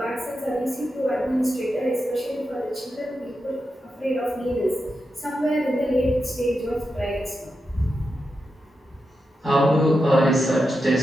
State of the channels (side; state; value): both; normal; correlation 0.88